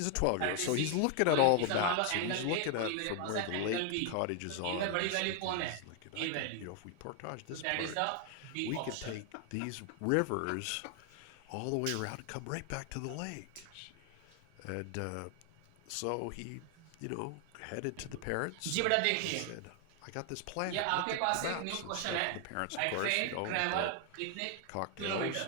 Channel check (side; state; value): both; different; correlation 0.00